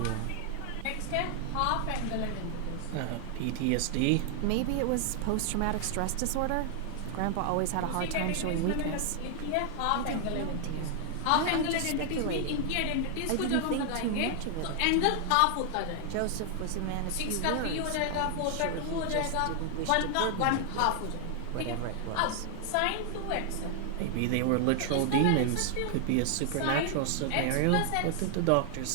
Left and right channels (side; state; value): both; different; correlation 0.00